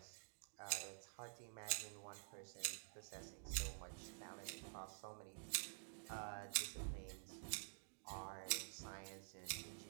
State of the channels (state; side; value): silent; left; digital silence